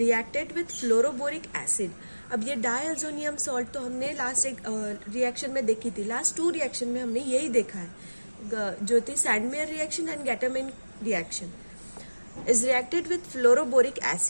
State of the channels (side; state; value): both; inverted; correlation -1.00